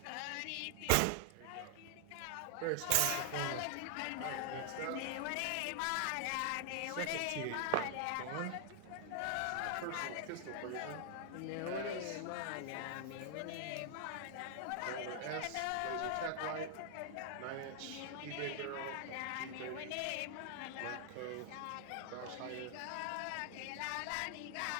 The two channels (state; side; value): different; both; correlation 0.00